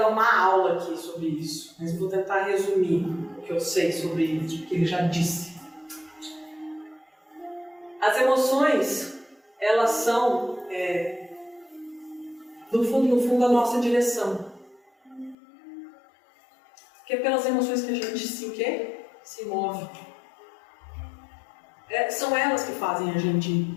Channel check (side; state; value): right; drops out; at 15.4 s